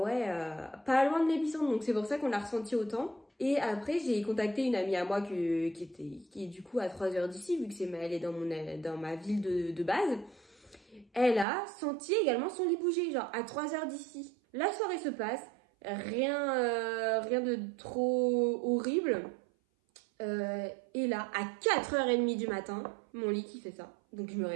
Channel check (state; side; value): drops out; left; at 11.5 s